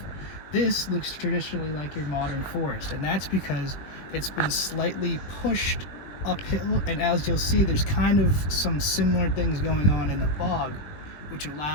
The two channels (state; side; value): late; right; 20 ms